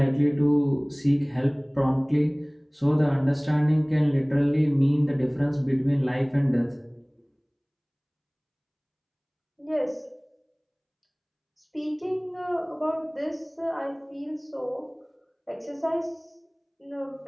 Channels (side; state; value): both; identical; correlation 1.00